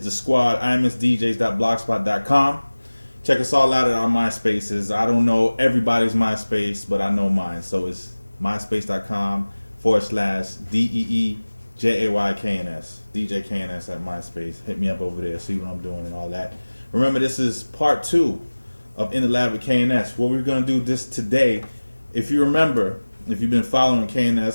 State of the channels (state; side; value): inverted; both; correlation -1.00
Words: squad, imsdjs.blogspot.com. Check us all out at our MySpaces. I don't know everybody's MySpace, but I know mine. So it's myspace.com/DEEJAYKNS. DJ KNS at MySpace. Hit me up over there, see what I'm doing and all that. Remember, this is part 2 of In the Lab with KNS. What we're going to do this today, if you remember, if you've been following